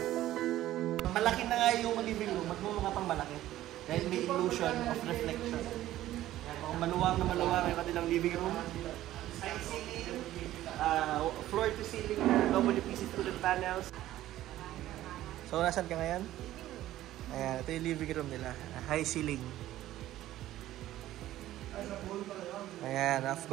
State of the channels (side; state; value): left; quieter; 14.2 dB